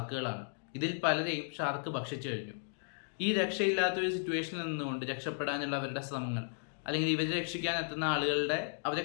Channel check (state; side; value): silent; right; digital silence